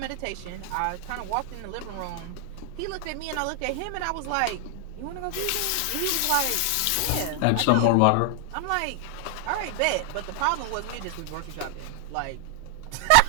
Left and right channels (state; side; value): different; both; correlation 0.00